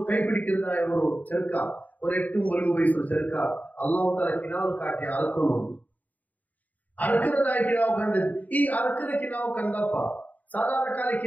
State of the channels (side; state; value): right; late; 0.076 ms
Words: ಕೈ പിടിക്കുന്നതായ ഒരു ചെറുക്ക, ഒരു 8-9 വയസ്സുള്ള ചെറുക്ക അല്ലാഹു തആല കിനാവ് കാട്ടി അറക്കുന്നു. അറക്കുന്നതായ കിനാവ് കണ്ടത്. ഈ അറക്കുന്ന കിനാവ് കണ്ടപ്പ സാധാരണ കാല